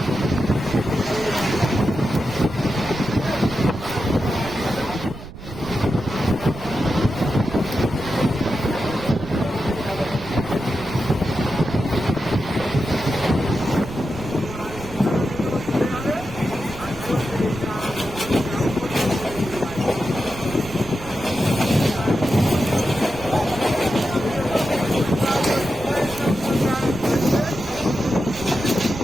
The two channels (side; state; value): right; noise; rumble, 13 dB below the sound